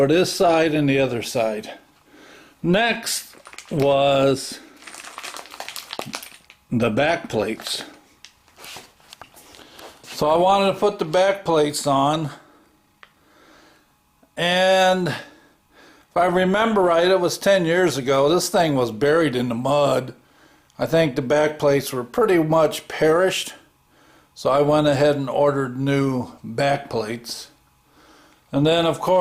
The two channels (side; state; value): both; identical; correlation 1.00